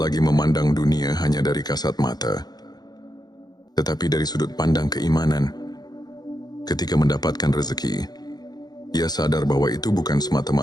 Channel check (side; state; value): right; late; 0.20 ms